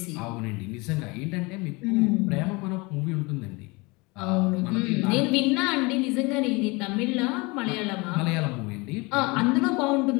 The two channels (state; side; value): quieter; right; 26.0 dB